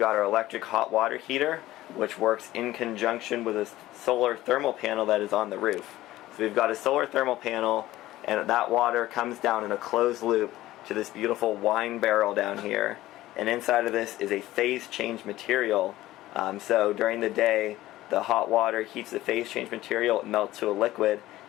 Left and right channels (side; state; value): right; quieter; 15.9 dB